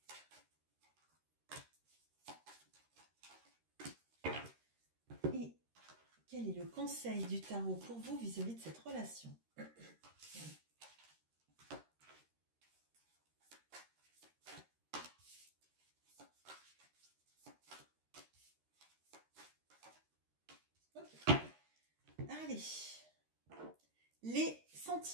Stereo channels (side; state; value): left; late; 13 ms